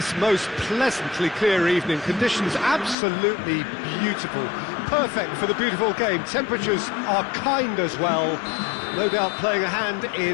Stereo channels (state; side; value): drops out; right; at 3.0 s